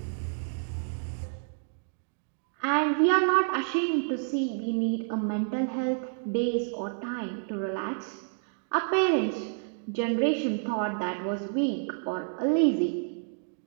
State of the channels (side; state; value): left; silent; digital silence